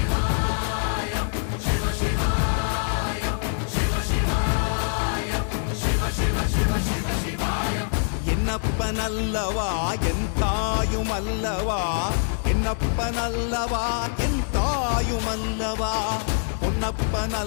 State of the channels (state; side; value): silent; right; 62 dB below the other